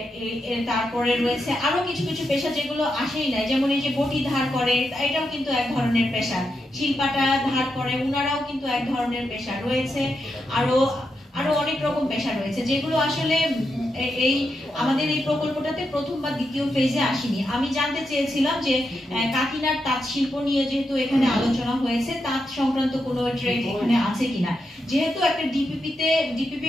তারপরে রয়েছে আরো কিছু কিছু পেশা যেগুলো আসেই নাই, যেমন এই যে বটি ধার করে, এটাও কিন্তু এক ধরনের পেশা। শিল্পাটা ধার করে, উনারাও কিন্তু এক ধরনের পেশা রয়েছে। আরো অনেক রকম পেশা রয়েছে যেগুলো আসলে আমাদের এই প্রকল্পটাতে প্রথম বা দ্বিতীয় ফেজে আসেনি। আমি জানতে চেয়েছিলাম যে কাকিনার তাঁত শিল্প নিয়ে যেহেতু এখানে আলোচনা হয়েছে, তাঁত সংক্রান্ত কোনো ট্রেড এখানে আছে কিনা। যেহেতু একটা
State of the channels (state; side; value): normal; both; correlation 0.85